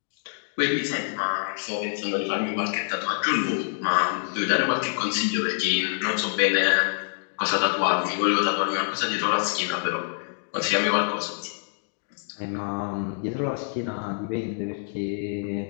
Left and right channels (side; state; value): right; silent; digital silence